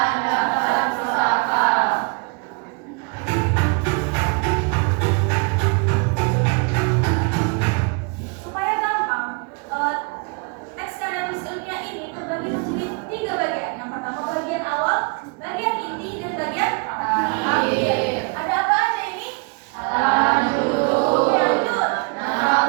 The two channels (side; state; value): left; quieter; 32.8 dB